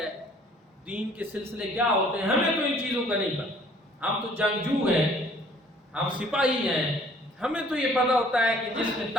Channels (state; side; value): normal; both; correlation 0.56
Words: دین کے سلسلے کیا ہوتے ہیں، ہمیں تو ان چیزوں کا نہیں پتا، ہم تو جنگجو ہیں، ہم سپاہی ہیں، ہمیں تو یہ پتہ ہوتا ہے کہ جس میں